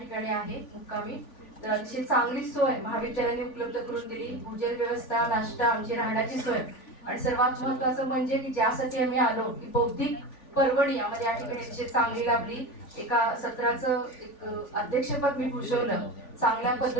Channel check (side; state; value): right; late; 3.5 ms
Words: आहे मुक्कामी, तर अतिशय चांगली सोय महाविद्यालयाने उपलब्ध करून दिली. भोजन व्यवस्था, नाश्ता, आमची राहण्याची सोय, आणि सर्वात महत्त्वाचं म्हणजे की ज्यासाठी आम्ही आलो की बौद्धिक परवडी आम्हाला या ठिकाणी अतिशय चांगली लाभली. एका सत्राचं एक अध्यक्षपद मी भूषवलं. चांगल्या